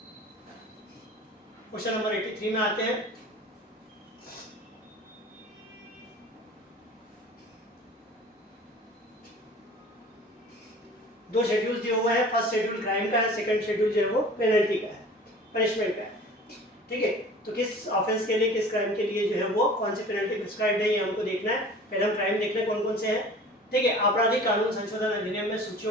Question number 83 में आते हैं। दो schedule दिए हुए हैं, फर्स्ट शेड्यूल क्राइम का है, सेकंड शेड्यूल जो है वो पेनल्टी का है, पनिशमेंट का है। ठीक है, तो किस ऑफेंस के लिए, किस क्राइम के लिए जो है वो कौन सी पेनल्टी प्रिस्क्राइब्ड है ये हमको देखना है। पहले हम क्राइम देख लें कौन कौन से हैं। ठीक है, आपराधिक कानून संशोधन अधिनियम में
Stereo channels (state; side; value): normal; both; correlation 0.43